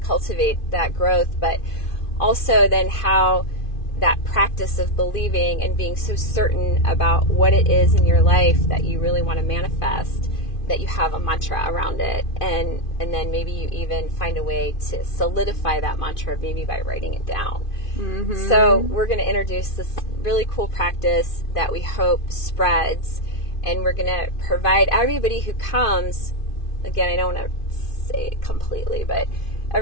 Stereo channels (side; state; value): right; late; 2.5 ms